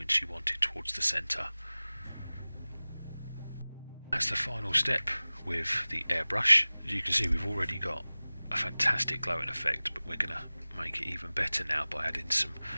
you want it towards the centre. That's the final step with the airbrush. As you can see, we've already got a fantastic glowing effect, but we're going to make it even better now by adding some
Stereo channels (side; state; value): both; inverted; correlation -0.99